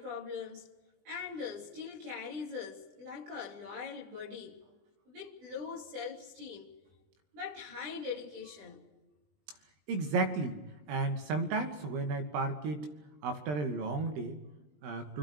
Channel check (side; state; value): left; late; 20 ms